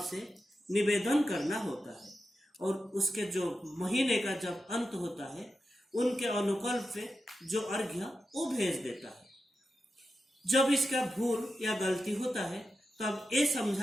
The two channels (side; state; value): both; normal; correlation 0.90